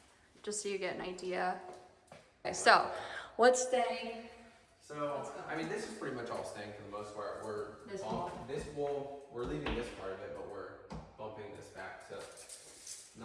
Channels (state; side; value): identical; both; correlation 1.00